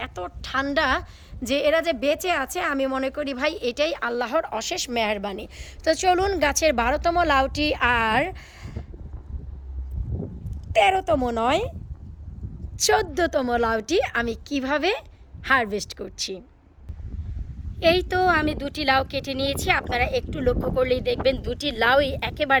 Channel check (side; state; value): both; identical; correlation 1.00